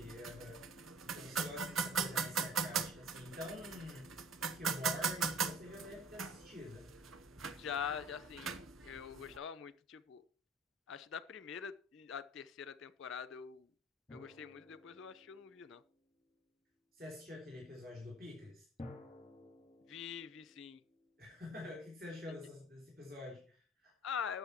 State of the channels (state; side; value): normal; both; correlation 0.46